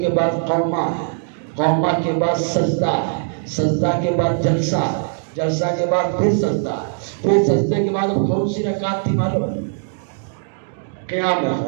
بعد قومہ ہے، قومہ کے بعد سجدہ ہے، سجدہ کے بعد جلسہ ہے، جلسہ کے بعد پھر سجدہ ہے، پھر سجدے کے بعد کون سی رکعت تھی معلوم ہے؟ قیام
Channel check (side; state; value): left; silent; digital silence